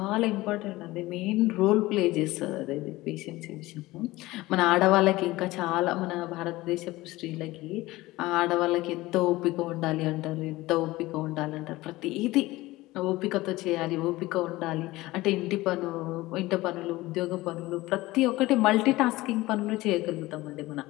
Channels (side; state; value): right; quieter; 18.9 dB